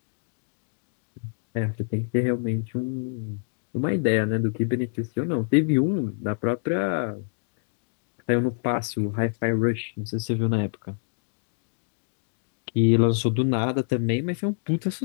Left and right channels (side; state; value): right; silent; 60 dB below the other